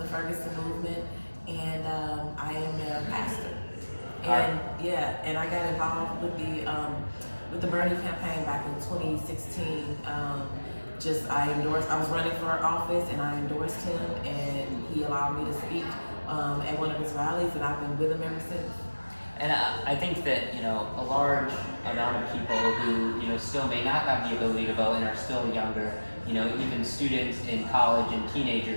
Ferguson movement, and I am a pastor. And I got involved with the Bernie campaign back in 2016. I was running for office, and I endorsed him, and he allowed me to speak at one of his rallies, and I've been with him ever since. And I think that, a large amount of people who, still may not have the ability to vote and are still younger, even students in college and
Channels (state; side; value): inverted; both; correlation -1.00